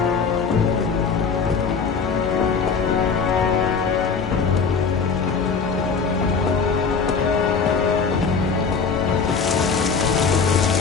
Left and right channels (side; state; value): right; quieter; 5.4 dB